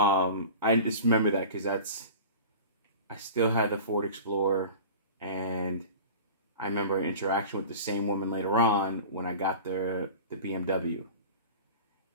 just remember that because I still had the Ford Explorer, and I remember an interaction with the same woman later on when I got the BMW.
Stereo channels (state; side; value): inverted; both; correlation -0.37